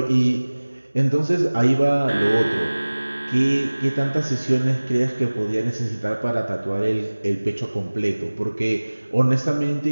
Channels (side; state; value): both; inverted; correlation -1.00